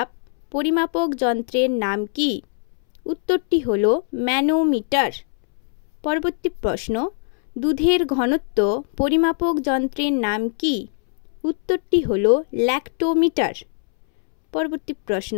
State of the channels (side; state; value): right; silent; 64 dB below the other